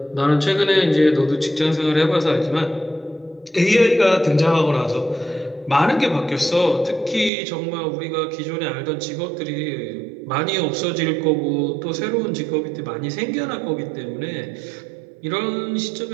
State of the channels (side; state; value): left; drops out; at 7.3 s